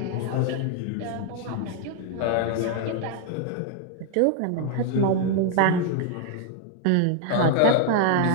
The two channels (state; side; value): different; both; correlation 0.00